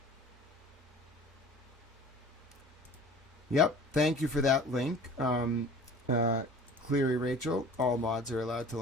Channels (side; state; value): both; normal; correlation 0.44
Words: Yep, thank you for that link. Cleary Rachel, all mods are allowed to